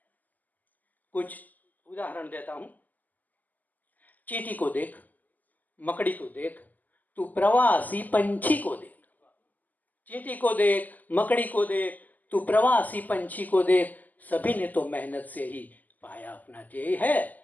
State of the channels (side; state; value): right; late; 0.082 ms